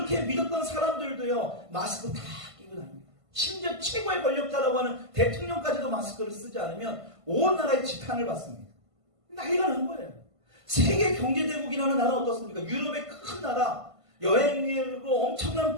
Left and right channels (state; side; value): late; left; 1.5 ms